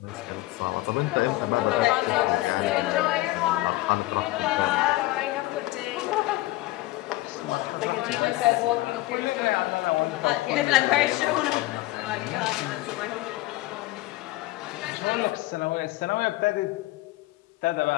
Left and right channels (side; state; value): right; quieter; 18.6 dB